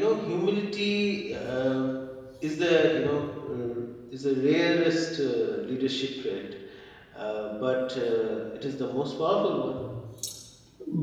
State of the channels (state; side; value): identical; both; correlation 1.00